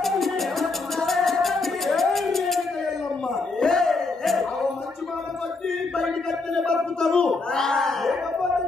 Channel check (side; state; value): right; quieter; 3.7 dB